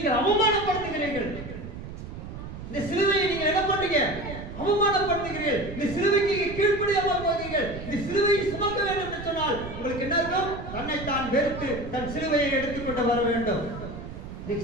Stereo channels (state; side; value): noise; right; rumble, 10 dB below the sound